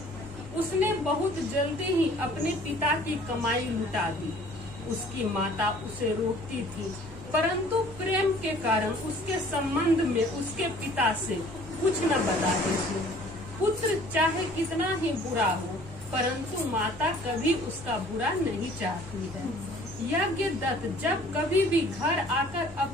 उसने बहुत जल्दी ही अपने पिता की कमाई लुटा दी। उसकी माता उसे रोकती थी, परंतु प्रेम के कारण उसके संबंध में उसके पिता से कुछ न बताती थी। पुत्र चाहे कितना ही बुरा हो, परंतु माता कभी उसका बुरा नहीं चाहती है। यज्ञदत्त जब कभी भी घर आकर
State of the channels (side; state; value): right; noise; hum, 18 dB below the sound